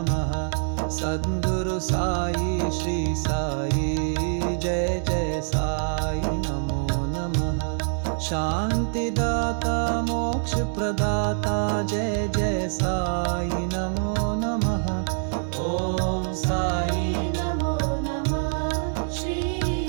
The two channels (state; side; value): silent; left; digital silence